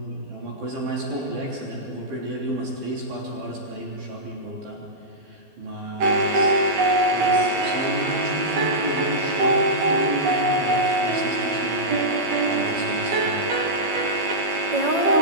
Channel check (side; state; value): left; late; 12 ms